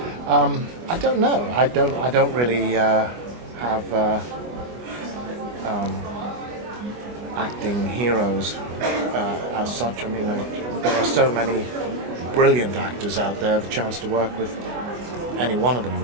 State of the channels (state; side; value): late; left; 24 ms